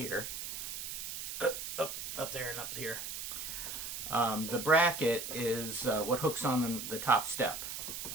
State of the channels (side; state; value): right; noise; hiss, 6 dB below the sound